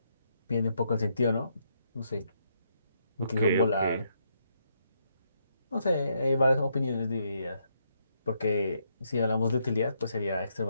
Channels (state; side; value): inverted; both; correlation -0.76